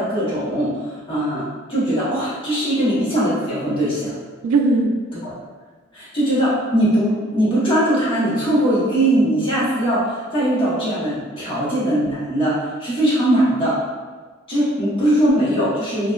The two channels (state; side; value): normal; both; correlation 0.58